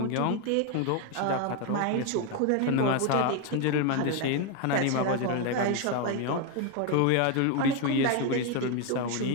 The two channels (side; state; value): both; different; correlation 0.01